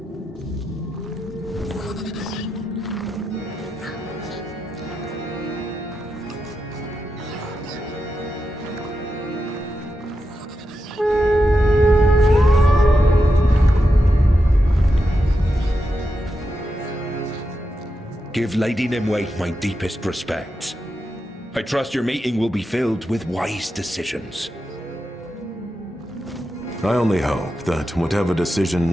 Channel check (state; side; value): normal; both; correlation 0.87